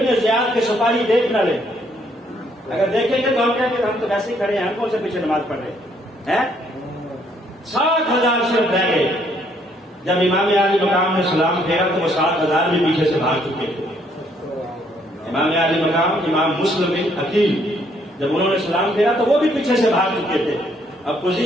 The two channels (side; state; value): both; normal; correlation 0.68